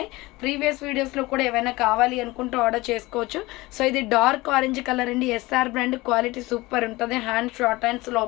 ప్రీవియస్ వీడియోస్లో కూడా ఏమైనా కావాలి అనుకుంటూ ఆర్డర్ చేసుకోవచ్చు. సో ఇది డార్క్ ఆరెంజ్ కలర్ అండి, SR బ్రాండ్. క్వాలిటీ సూపర్ ఉంటుంది. హ్యాండ్స్ షార్ట్ హ్యాండ్స్,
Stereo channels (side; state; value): right; quieter; 20.9 dB